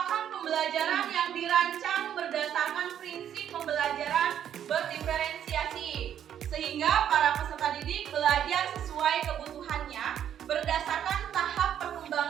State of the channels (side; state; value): left; quieter; 9.8 dB